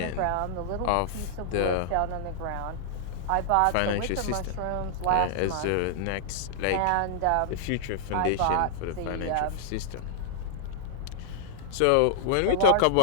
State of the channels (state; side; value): different; both; correlation -0.01